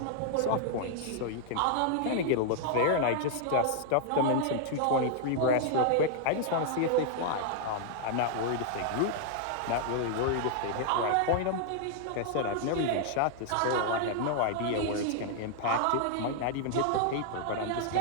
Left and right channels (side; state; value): both; different; correlation -0.01